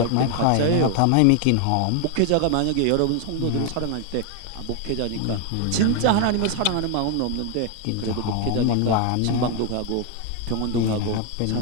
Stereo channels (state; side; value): different; both; correlation 0.01